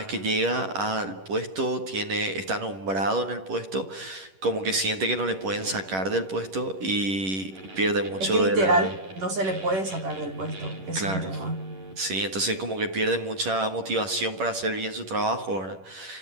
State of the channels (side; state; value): left; late; 11 ms